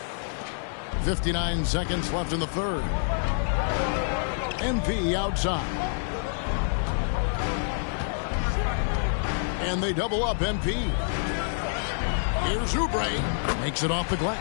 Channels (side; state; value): right; silent; digital silence